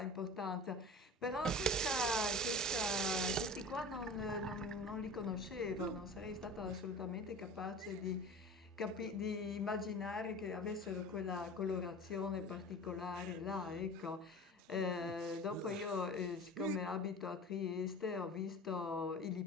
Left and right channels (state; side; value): normal; both; correlation 0.37